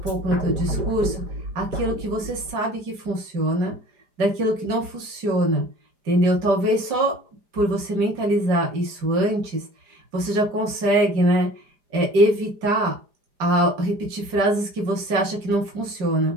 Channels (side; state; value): left; late; 5.0 ms